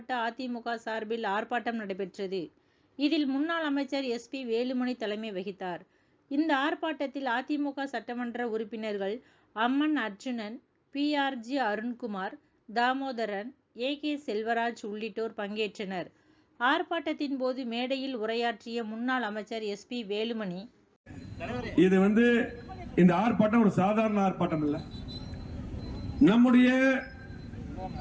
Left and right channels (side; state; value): both; identical; correlation 1.00